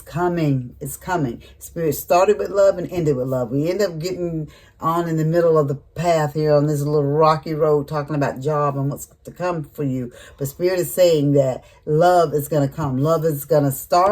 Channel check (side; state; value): both; identical; correlation 1.00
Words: It's coming. Spirit started with love and ended with love. We end up getting on in the middle of the path here on this little rocky road talking about job and what's to come for you. But Spirit is saying that love is going to come. Love is going to